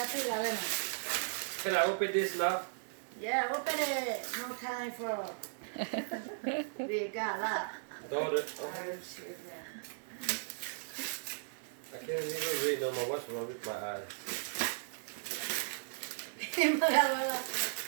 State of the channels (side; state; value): left; silent; digital silence